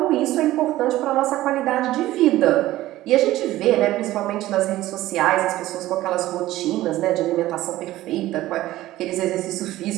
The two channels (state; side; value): quieter; left; 15.8 dB